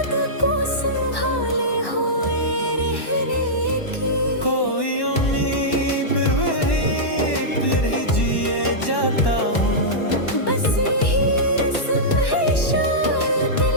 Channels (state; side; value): late; right; 1.1 ms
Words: को संभाले हुए रहने की। कोई उम्मीद फिर ही जिए जाता हूँ। बस यही रस्म है शायद दिल